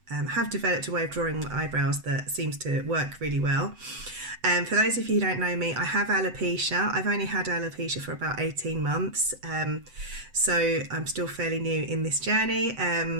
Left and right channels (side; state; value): left; late; 7.9 ms